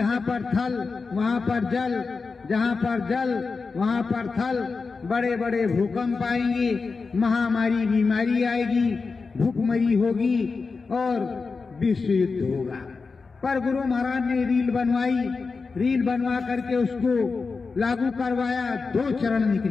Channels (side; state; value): right; quieter; 4.5 dB